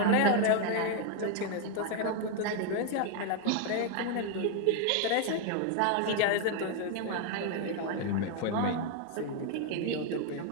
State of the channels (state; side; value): different; both; correlation 0.01